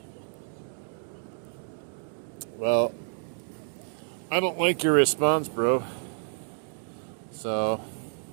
Well, I don't like your response, bro. So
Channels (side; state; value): left; silent; 58 dB below the other